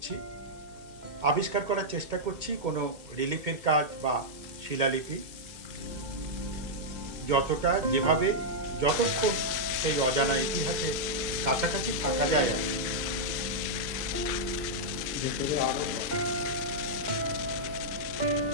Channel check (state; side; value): late; left; 2.2 ms